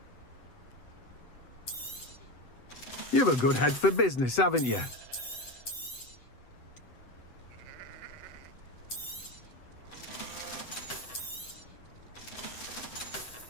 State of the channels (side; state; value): right; late; 7.9 ms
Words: You've a good head for business, haven't you?